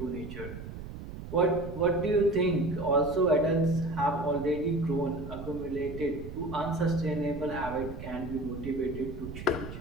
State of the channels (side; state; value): right; noise; rumble, 10 dB below the sound